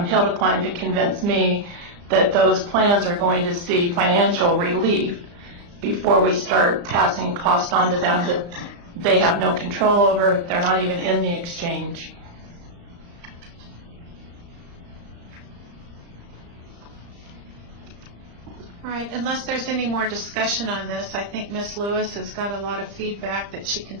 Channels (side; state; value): left; late; 35 ms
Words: hill to climb to convince me that those plans are going to see financial relief before we start passing cost on to them that they have no control over. They're not even in the exchange. All right, unless there's any more discussion on this, I think Ms. Lewis has got a lot of feedback that she can